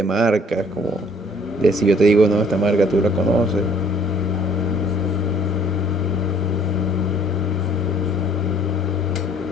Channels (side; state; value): both; normal; correlation 0.57